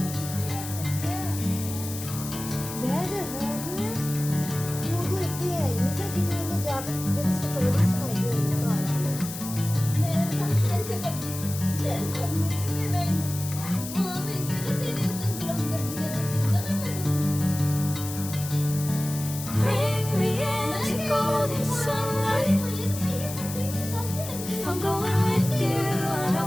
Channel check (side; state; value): left; noise; hiss, 9 dB below the sound